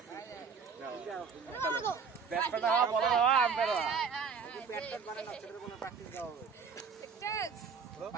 ব্যাটটা বল বাবা আম্পায়ার ব্যাটটা বানানো ছেলের কোনো প্র্যাকটিস দাও হবে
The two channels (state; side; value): quieter; left; 5.9 dB